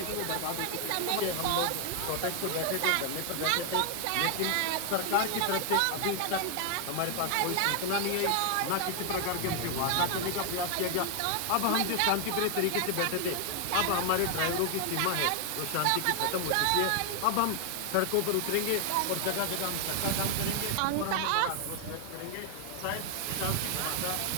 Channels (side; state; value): both; different; correlation 0.00